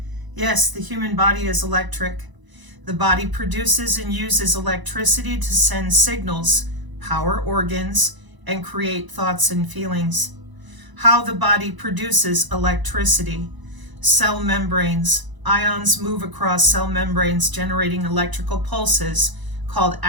Yes, the human body is electric. The body produces and uses electricity to send signals, power organs, and create thoughts and feelings. How the body produces electricity. Cell membranes. Ions move across cell membranes, generating electrical pulses called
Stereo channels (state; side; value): late; left; 1.0 ms